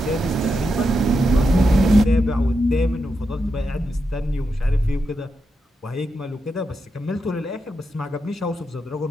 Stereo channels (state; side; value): normal; both; correlation 0.85